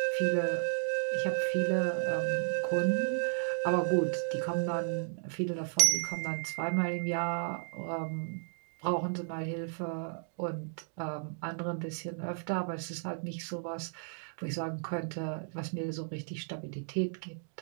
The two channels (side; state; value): left; silent; digital silence